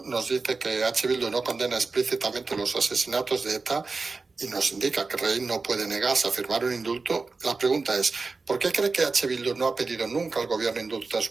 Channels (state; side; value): quieter; left; 4.1 dB